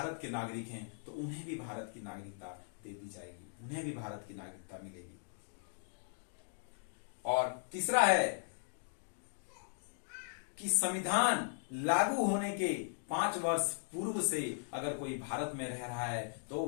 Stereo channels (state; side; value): silent; right; digital silence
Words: के नागरिक हैं, तो उन्हें भी भारत की नागरिकता दे दी जाएगी, उन्हें भी भारत की नागरिकता मिलेगी। और तीसरा है कि संविधान लागू होने के 5 वर्ष पूर्व से अगर कोई भारत में रह रहा है तो